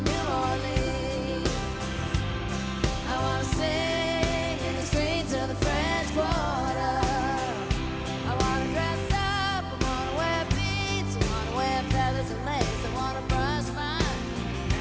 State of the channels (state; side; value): identical; both; correlation 1.00